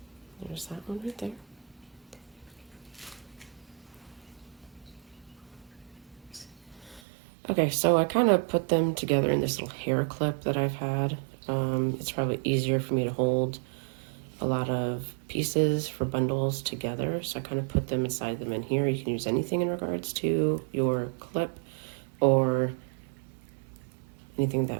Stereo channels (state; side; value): drops out; left; at 7.0 s